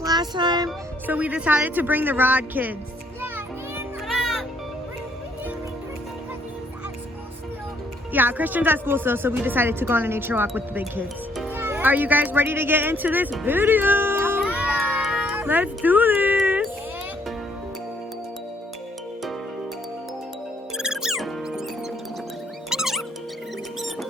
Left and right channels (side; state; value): both; normal; correlation 0.67